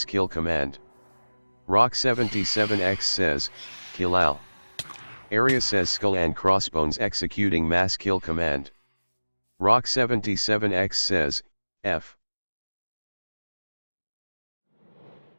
kill command. Rock77X says, kill Al. Aeris says skull and crossbones executing mass kill command. Rock77X says, F.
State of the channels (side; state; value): both; inverted; correlation -1.00